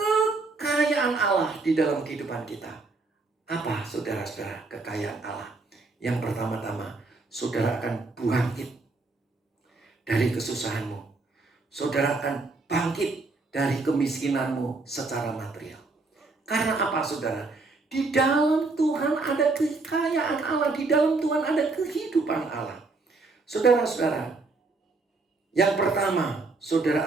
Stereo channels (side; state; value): left; quieter; 3.6 dB